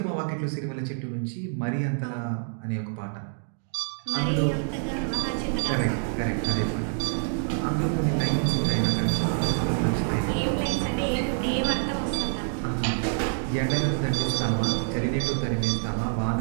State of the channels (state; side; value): silent; left; 60 dB below the other